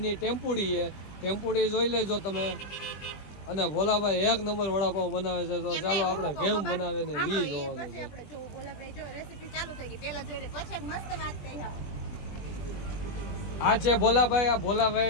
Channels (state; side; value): late; right; 20 ms